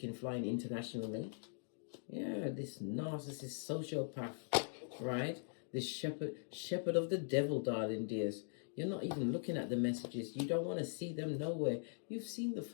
flying internationally. Yeah, this narcissist sociopath, right? This shepherd of the devil, darling dears. You're not even looking at the messages. You don't want to see them nowhere. You've seen the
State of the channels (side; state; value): right; silent; digital silence